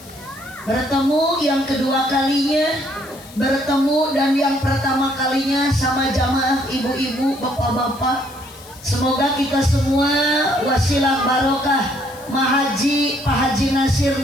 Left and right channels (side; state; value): left; noise; hiss, 21 dB below the sound